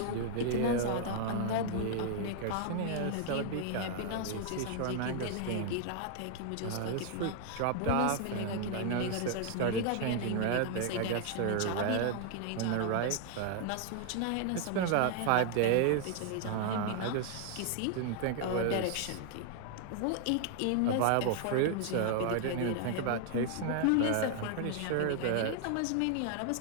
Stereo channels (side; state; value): both; different; correlation 0.00